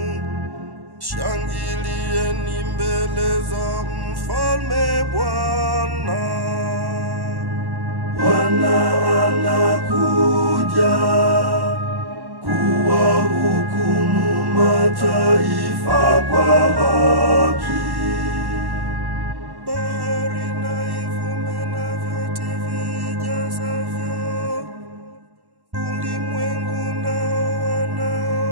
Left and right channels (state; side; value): late; left; 1.1 ms